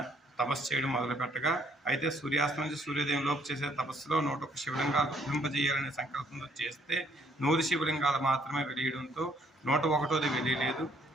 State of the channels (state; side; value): normal; both; correlation 0.65